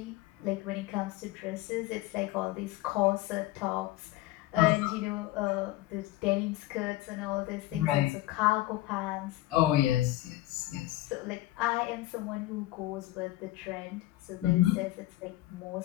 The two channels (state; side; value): quieter; right; 16.8 dB